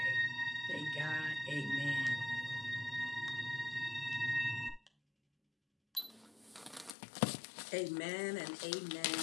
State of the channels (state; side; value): drops out; right; at 7.0 s